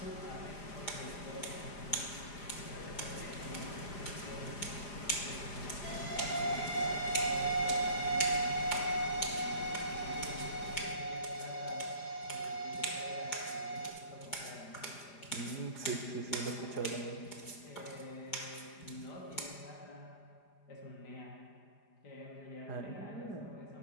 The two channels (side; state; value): right; late; 4.9 ms